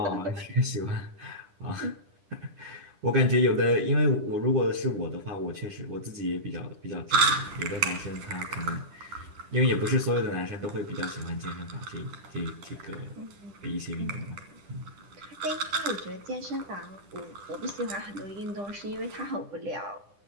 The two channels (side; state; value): left; late; 10 ms